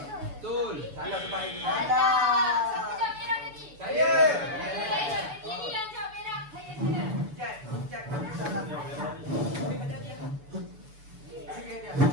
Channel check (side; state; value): left; late; 6.9 ms